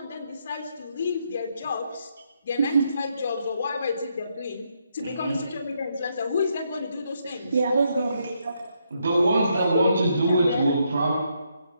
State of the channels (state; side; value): inverted; both; correlation -0.77